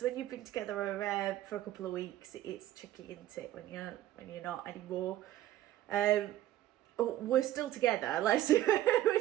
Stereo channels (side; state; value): left; quieter; 13.6 dB